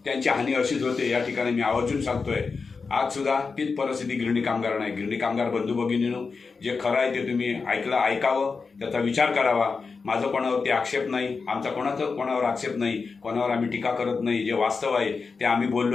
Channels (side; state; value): right; quieter; 4.8 dB